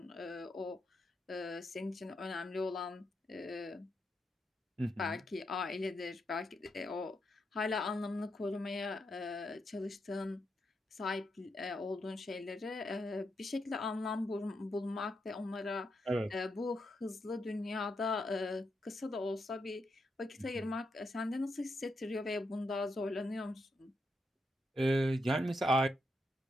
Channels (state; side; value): normal; both; correlation 0.82